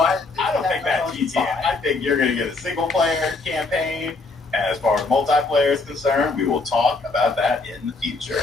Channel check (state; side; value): quieter; right; 3.6 dB